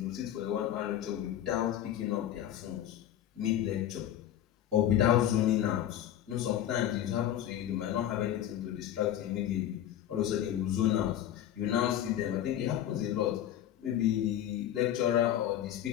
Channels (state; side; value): quieter; right; 11.4 dB